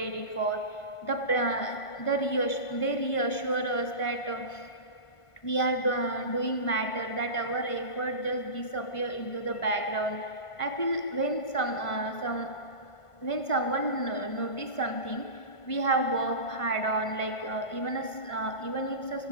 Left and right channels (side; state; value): right; late; 1.5 ms